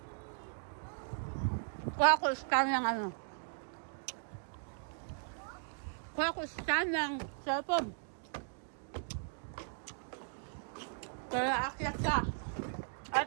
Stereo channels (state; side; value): silent; left; digital silence